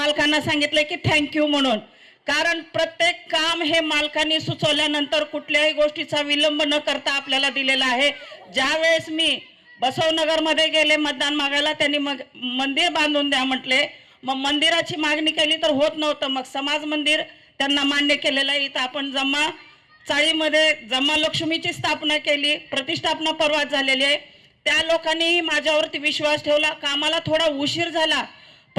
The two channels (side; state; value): both; identical; correlation 1.00